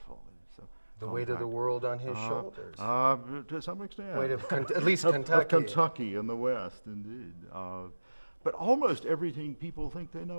The weight of the world on his shoulders. To some extent. Weight of at least Kentucky. Of Kentucky in the West, indeed. But almost everything people think they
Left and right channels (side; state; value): both; inverted; correlation -1.00